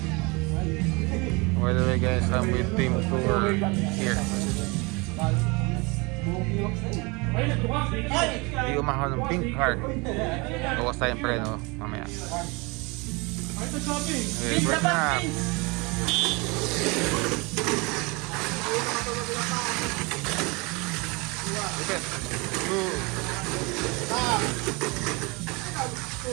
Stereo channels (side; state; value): left; quieter; 27.4 dB